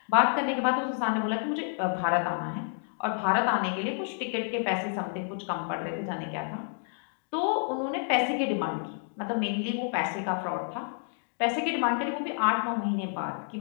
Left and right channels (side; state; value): right; silent; 58 dB below the other